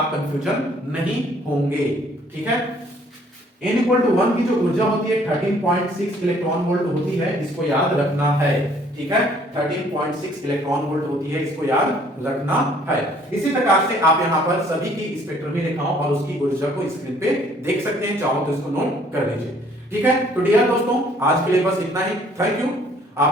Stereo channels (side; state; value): both; normal; correlation 0.60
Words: कंफ्यूजन नहीं होंगे, ठीक है। n इक्वल टू 1 की जो ऊर्जा होती है 13.6 इलेक्ट्रॉन वोल्ट होती है, इसको याद रखना है, ठीक है। 13.6 इलेक्ट्रॉन वोल्ट होती है, इसको याद रखना है। इसी प्रकार से आप यहां पर सभी की स्पेक्ट्रम भी लिखा और उसकी ऊर्जा को स्क्रीन पे देख सकते हैं, चाहो तो इसको नोट कर लीजिए, ठीक है। तो डियर दोस्तों, आज के लिए बस इतना ही। Thank you.